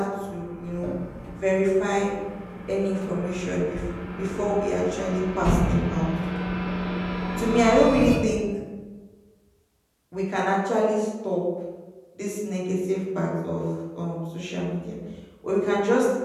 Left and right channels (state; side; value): identical; both; correlation 1.00